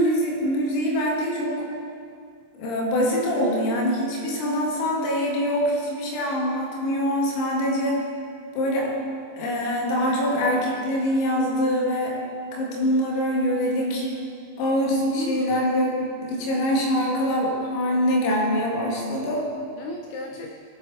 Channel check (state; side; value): late; right; 26 ms